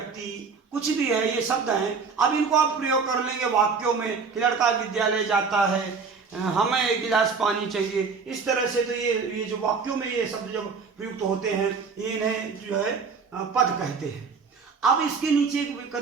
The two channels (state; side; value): quieter; left; 5.2 dB